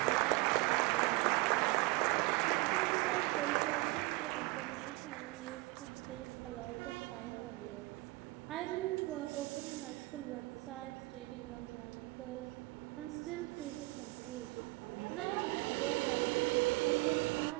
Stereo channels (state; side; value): quieter; left; 23.1 dB